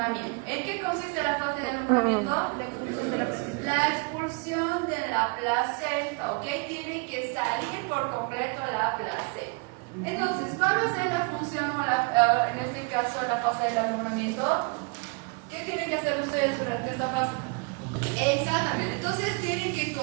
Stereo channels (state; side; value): quieter; left; 32.9 dB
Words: ¿En qué consiste la fase de alumbramiento? La expulsión de la placenta, ¿ok? Tiene que salir por completo la placenta. Entonces, ¿cuál va a ser la función, o en este caso, la fase del alumbramiento? ¿Qué tienen que hacer ustedes durante esta fase? Exactamente. Entonces, tienen que